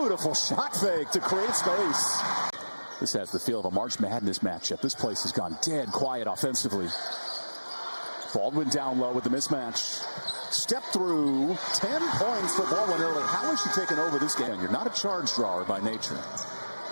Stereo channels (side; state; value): both; inverted; correlation -1.00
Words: shot fake to create space. This has the feel of a March Madness matchup. This place has gone dead quiet offensively. Baldwin down low with the mismatch. Step through. 10 points for Baldwin early. How is she taking over this game? You're not a charge drawer by nature.